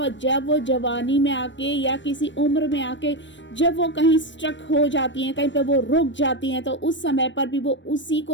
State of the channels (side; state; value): right; late; 0.53 ms